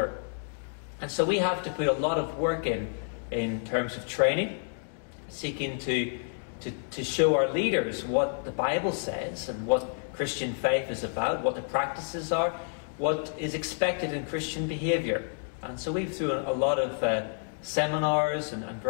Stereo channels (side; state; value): right; silent; digital silence